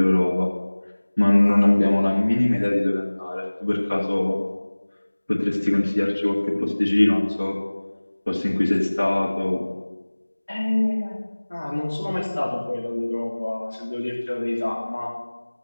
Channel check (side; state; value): both; inverted; correlation -1.00